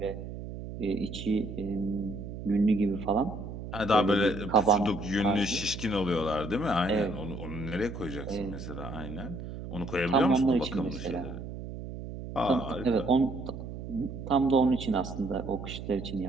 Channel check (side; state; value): right; noise; hum, 9 dB below the sound